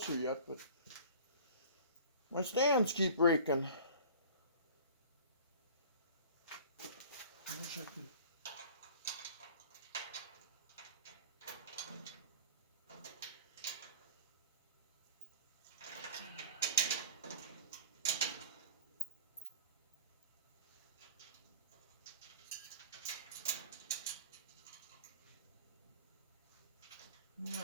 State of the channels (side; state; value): both; inverted; correlation -0.41